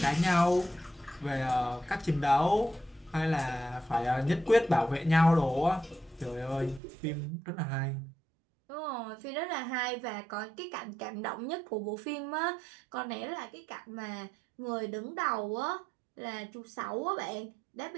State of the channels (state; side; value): drops out; left; at 6.8 s